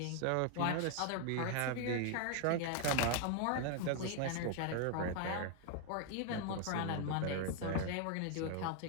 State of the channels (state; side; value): different; both; correlation 0.00